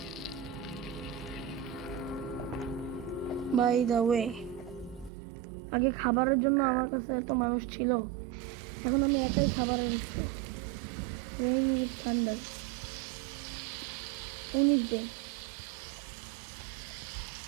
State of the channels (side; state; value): left; drops out; at 5.1 s